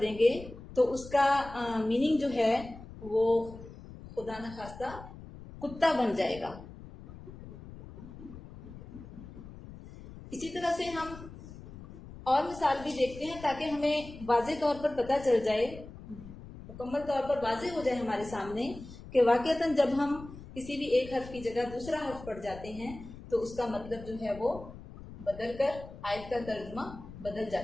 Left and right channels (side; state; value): left; noise; rumble, 15 dB below the sound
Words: دیں گے تو اس کا میننگ جو ہے وہ خدا نخواستہ کتا بن جائے گا. اسی طرح سے ہم اور مثال بھی دیکھتے ہیں تاکہ ہمیں واضح طور پر پتہ چل جائے، مکمل طور پر واضح ہو جائے ہمارے سامنے کہ واقعتاً جب ہم کسی بھی ایک حرف کی جگہ دوسرا حرف پڑھ جاتے ہیں تو اس کا مطلب جو ہے وہ بدل کر آیت کا ترجمہ بدل